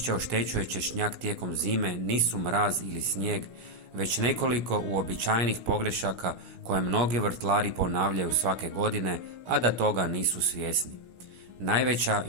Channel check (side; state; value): left; late; 17 ms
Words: oštećuje češnjak tijekom zime nisu mraz ili snijeg, već nekoliko uobičajenih pogrešaka koje mnogi vrtlari ponavljaju svake godine, a da toga nisu svjesni. Najveća